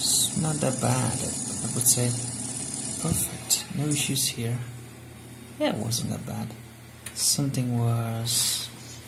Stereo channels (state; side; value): identical; both; correlation 1.00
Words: not that bad, I would say. Perfect, no issues here. Yeah, it wasn't that bad. Something was